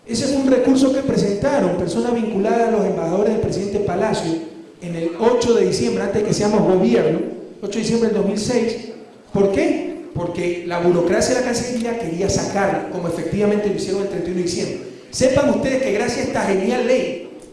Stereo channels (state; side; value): identical; both; correlation 1.00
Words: Ese fue un recurso que presentaron personas vinculadas a los embajadores del presidente Palacio en el 8 de diciembre, antes de que seamos gobierno, 8 de diciembre del 2006. ¿Por qué? Porque la burocracia de la Cancillería quería sacarlo, como efectivamente lo hicieron el 31 de diciembre. Sepan ustedes que gracias a esta genial ley